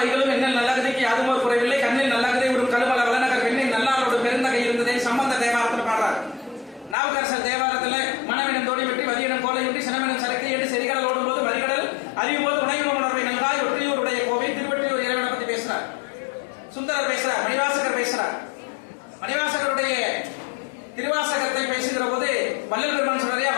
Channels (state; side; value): drops out; right; at 7.0 s